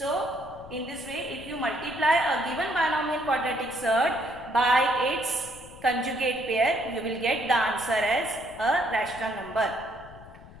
in this way, if you multiply a given binomial quadratic surd by its conjugate pair, you will get the answer as a rational number.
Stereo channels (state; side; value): noise; left; rumble, 19 dB below the sound